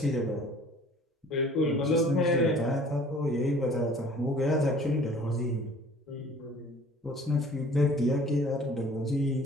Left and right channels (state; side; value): normal; both; correlation 0.50